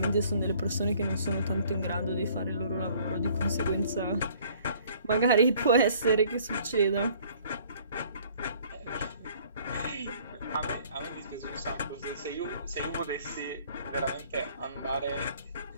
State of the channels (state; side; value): inverted; both; correlation -0.57